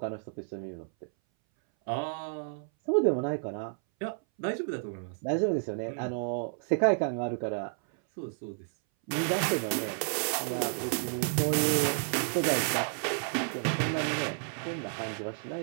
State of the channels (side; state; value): left; silent; 57 dB below the other